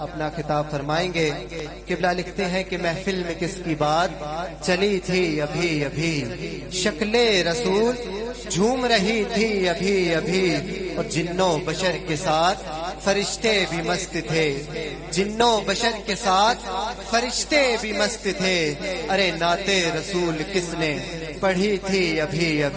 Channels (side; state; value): both; identical; correlation 1.00